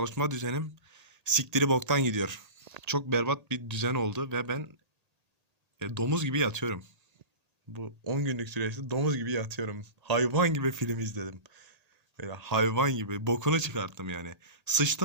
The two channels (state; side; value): late; left; 1.8 ms